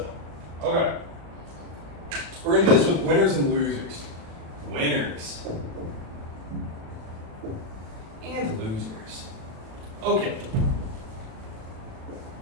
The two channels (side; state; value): left; late; 36 ms